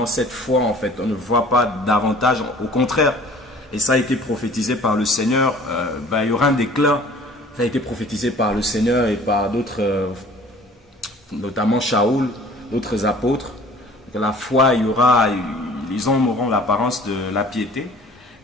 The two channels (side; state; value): both; normal; correlation 0.49